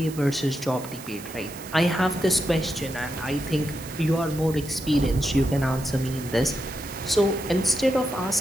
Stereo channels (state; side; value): noise; right; hiss, 16 dB below the sound